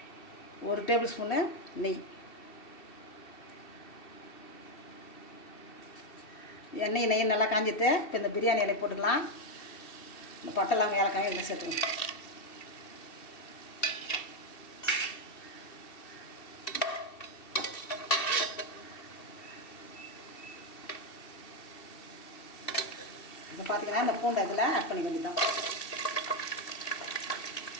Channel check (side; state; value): right; late; 2.7 ms